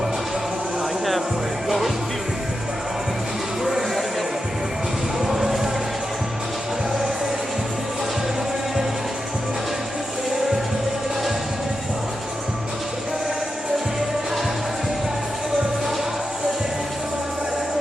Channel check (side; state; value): both; normal; correlation 0.88